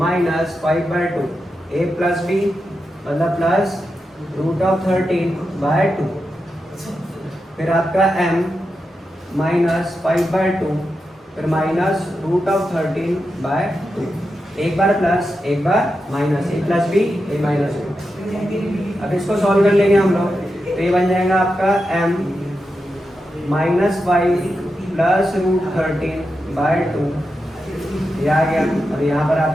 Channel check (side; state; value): both; normal; correlation 0.88